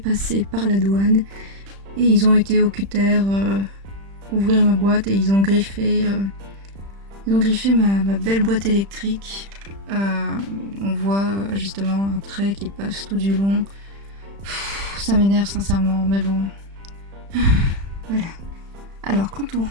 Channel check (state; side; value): late; left; 35 ms